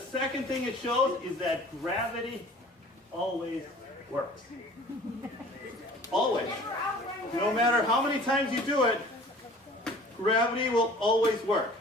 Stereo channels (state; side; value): normal; both; correlation 0.47